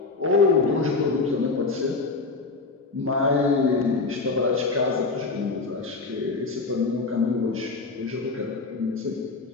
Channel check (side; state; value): right; quieter; 3.9 dB